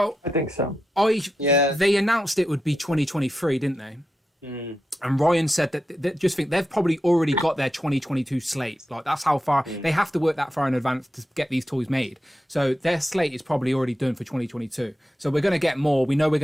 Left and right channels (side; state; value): both; normal; correlation 0.89